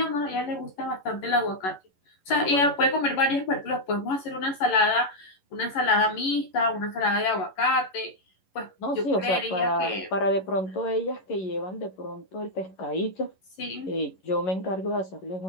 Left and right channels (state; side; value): late; right; 11 ms